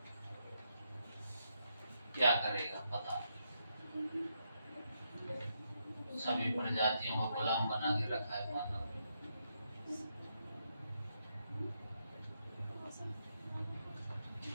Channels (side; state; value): both; inverted; correlation -0.81